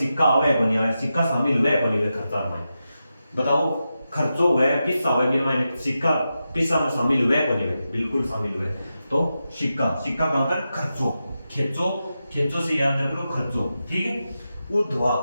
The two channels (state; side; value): inverted; both; correlation -0.90